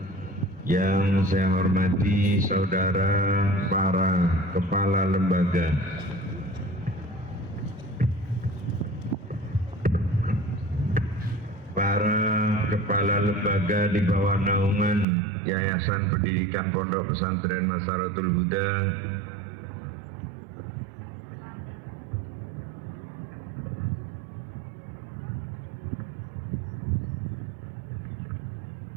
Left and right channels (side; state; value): left; drops out; at 15.1 s